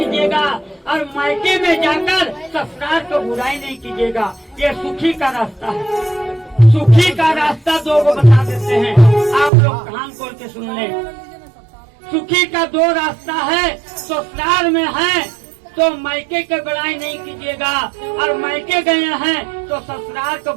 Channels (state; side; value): drops out; left; at 9.5 s